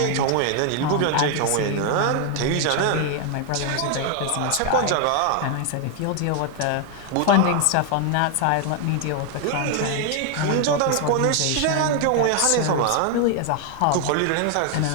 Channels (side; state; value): both; different; correlation 0.00